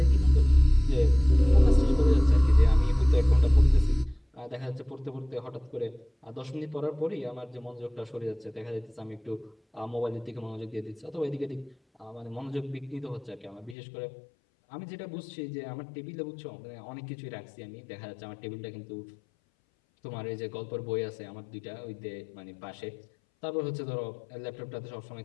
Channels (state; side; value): drops out; right; at 13.8 s